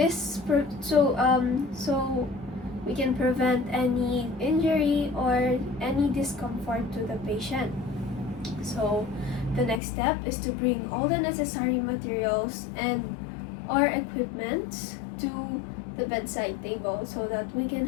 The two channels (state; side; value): drops out; right; at 9.8 s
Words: So we can prevent any injury or any discomfort to the patient. So the next step is to bring all the necessary materials and or equipment to the bedside table so that we can